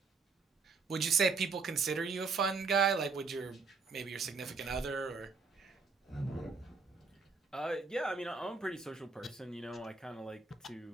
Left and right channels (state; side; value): quieter; left; 4.6 dB